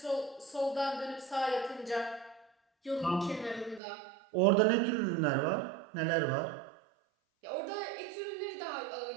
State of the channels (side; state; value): left; drops out; at 3.8 s